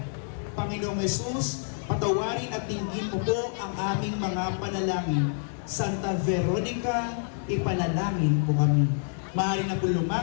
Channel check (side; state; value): right; silent; digital silence